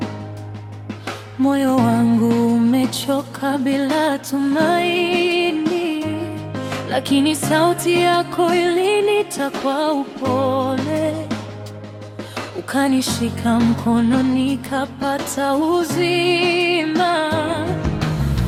moyo wangu umechoka bila tumaini, lakini sauti yako ilinita kwa upole, ukanishika mkono nikapata uzima.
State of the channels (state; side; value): identical; both; correlation 1.00